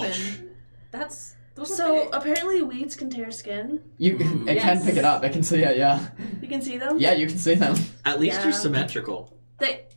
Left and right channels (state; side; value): inverted; both; correlation -1.00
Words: those So apparently weeds can tear skin. It can Yes. pick it up. It can see it. Yeah. You can see them. Yeah, you can see them. At least Yeah. you're symmetrical.